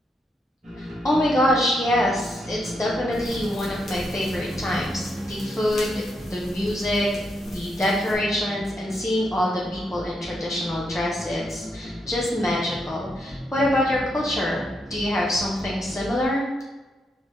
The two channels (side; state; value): both; normal; correlation 0.80